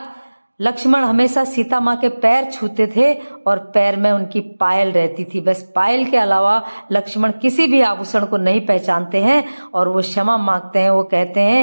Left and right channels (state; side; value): inverted; both; correlation -1.00